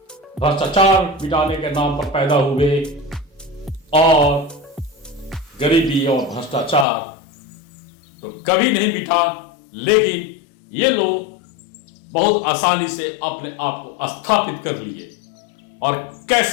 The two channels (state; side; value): drops out; right; at 6.9 s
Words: भ्रष्टाचार मिटाने के नाम पर पैदा हुए, और गरीबी और भ्रष्टाचार तो कभी नहीं मिटा, लेकिन ये लोग बहुत आसानी से अपने आप को स्थापित कर लिए। और